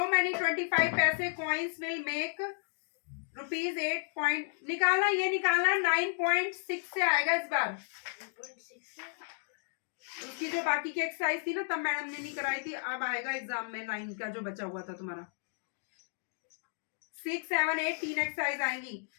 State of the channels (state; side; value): silent; right; digital silence